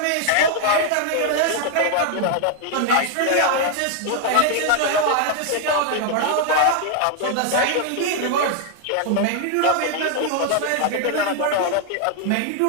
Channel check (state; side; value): different; both; correlation 0.00